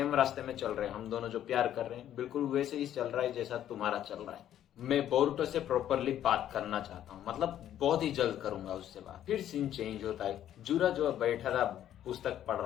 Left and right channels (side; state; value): right; quieter; 11.2 dB